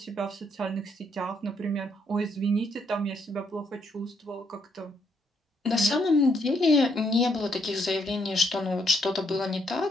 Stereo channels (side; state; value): both; normal; correlation 0.73